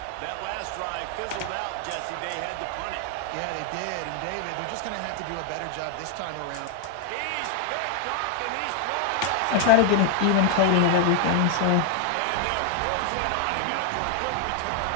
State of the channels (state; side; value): different; both; correlation 0.00